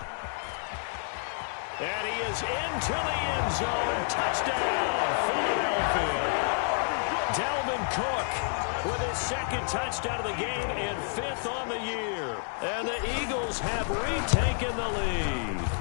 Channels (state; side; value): silent; right; 58 dB below the other